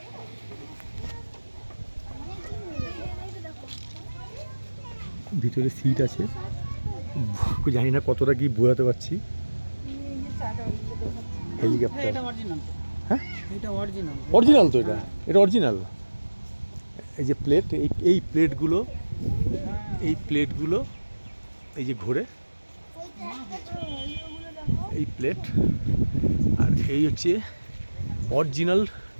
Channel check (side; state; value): both; inverted; correlation -1.00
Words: ভিতরে সিট আছে, জানি না কতটা কি বোঝাতে পারছি। হেলিকপ্টার, হ্যাঁ অরিজিনাল তো, এটা অরিজিনাল। এই যে প্লেট, এই প্লেটগুলো এই যে ঘোরে, এই প্লেট, আর এই হচ্ছে অরিজিনাল